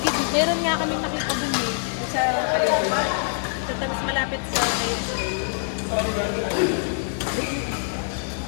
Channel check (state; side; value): silent; right; digital silence